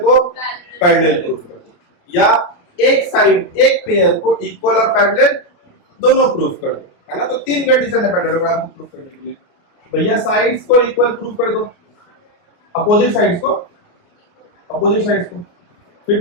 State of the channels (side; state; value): right; late; 29 ms